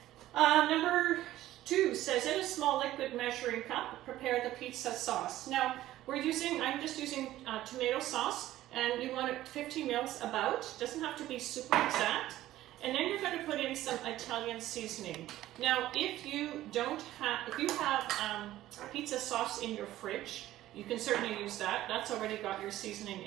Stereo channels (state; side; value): quieter; left; 14.6 dB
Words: Number 2 says, in a small liquid measuring cup, prepare the pizza sauce. Now, I'm just using tomato sauce, and you want it 50 mils about. Doesn't have to be super exact. And then you're going to put in some Italian seasoning. Now, if you have pizza sauce in your fridge, you can certainly use that. That's already got your seasoning